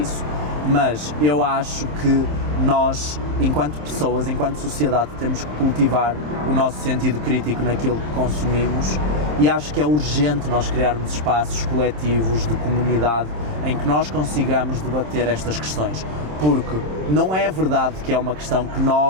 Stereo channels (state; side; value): late; left; 27 ms